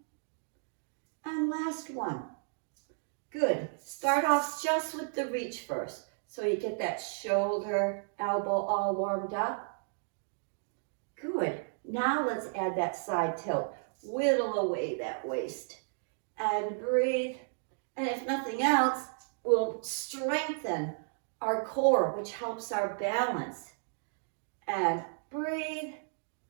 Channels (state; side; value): silent; left; digital silence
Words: And last one. Good. Start off just with the reach first. So you get that shoulder, elbow all warmed up. Good. Now let's add that side tilt. Whittle away that waist. And breathe. And if nothing else, we'll strengthen our core, which helps our balance. And breathe.